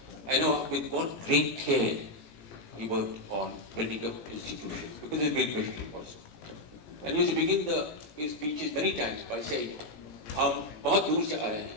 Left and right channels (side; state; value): right; late; 18 ms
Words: I know with what great care he worked on building up institutions, because it's a great question also. And he used to begin his speeches many times by saying, हम बहुत दूर से आए हैं